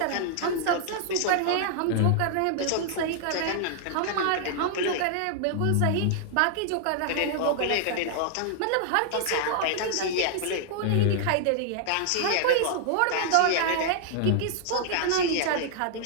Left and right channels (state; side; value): different; both; correlation -0.01